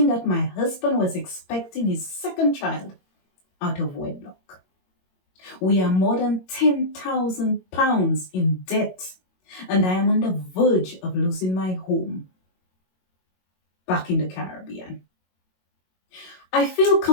that my husband was expecting his second child out of wedlock. We are more than £10,000 in debt, and I am on the verge of losing my home back in the Caribbean. I feel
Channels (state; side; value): late; right; 22 ms